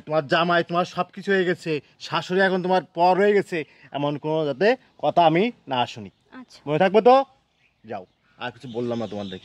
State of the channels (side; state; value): both; identical; correlation 1.00